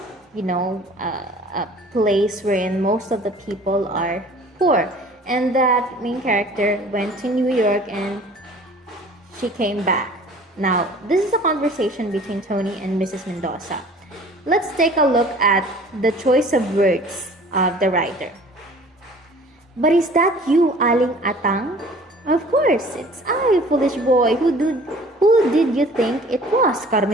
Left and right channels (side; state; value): both; normal; correlation 0.48